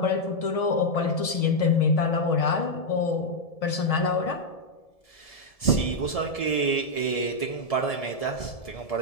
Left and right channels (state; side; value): late; right; 1.7 ms